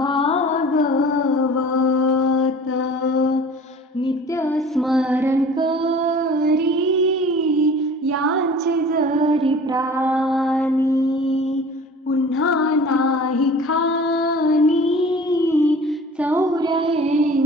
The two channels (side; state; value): both; normal; correlation 0.44